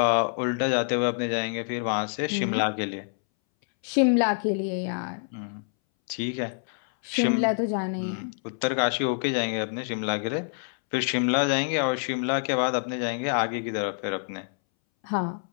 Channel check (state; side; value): silent; right; 60 dB below the other